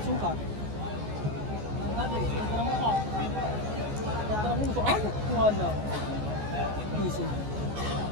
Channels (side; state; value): left; late; 14 ms